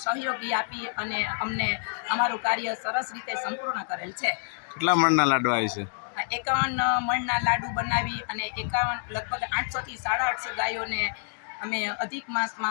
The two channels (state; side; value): silent; right; digital silence